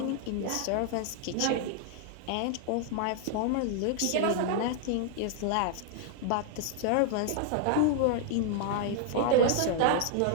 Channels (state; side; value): different; both; correlation 0.00